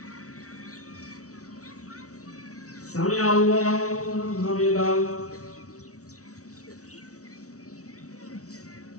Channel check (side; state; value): right; late; 0.65 ms